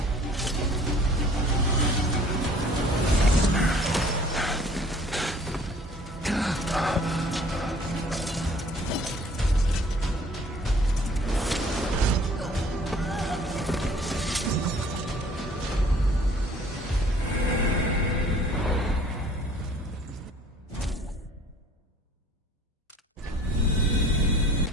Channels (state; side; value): normal; both; correlation 0.53